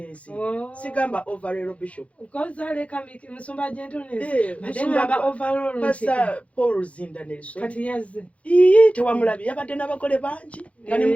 sigamba overall bishop kozaleka musumba gentleness musumba overall basa Paul Zinda Nelson kati yazze tewamulabi yabadde n'abagole bangi nga ne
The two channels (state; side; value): late; right; 0.064 ms